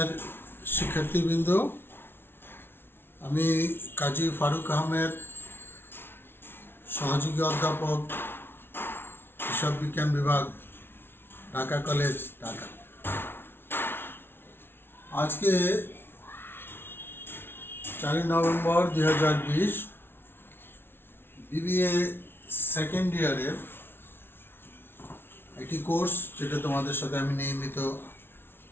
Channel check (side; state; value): right; late; 0.11 ms